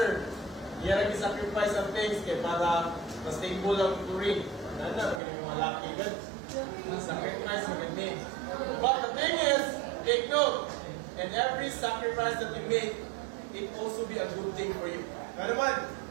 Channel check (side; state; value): left; drops out; at 5.2 s